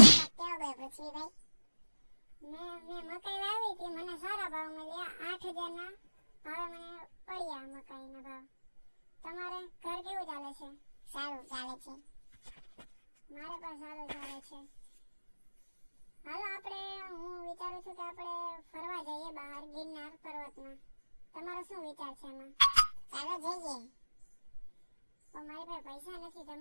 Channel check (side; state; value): both; inverted; correlation -1.00